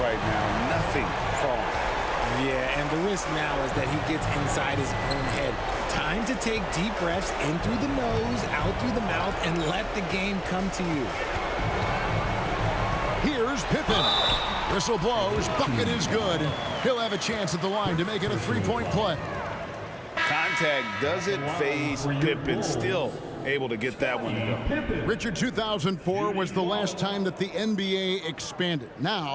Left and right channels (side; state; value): both; identical; correlation 1.00